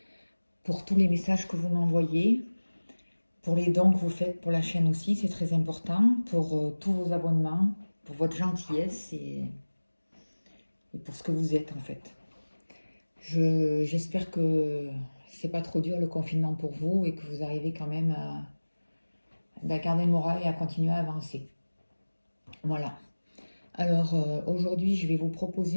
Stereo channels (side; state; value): both; inverted; correlation -1.00